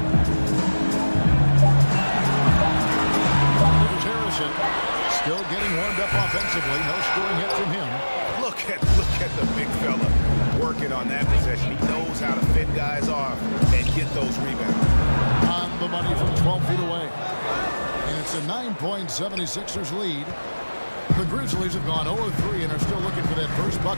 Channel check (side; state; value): both; inverted; correlation -1.00